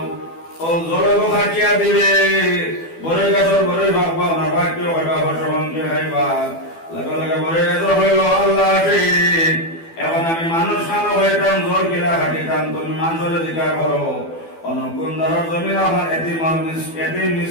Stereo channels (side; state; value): right; late; 12 ms